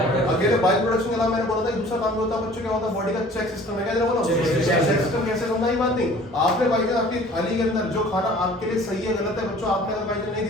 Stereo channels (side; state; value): both; normal; correlation 0.49